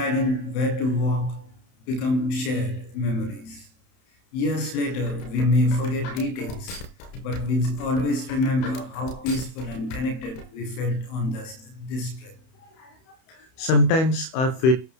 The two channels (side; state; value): right; late; 31 ms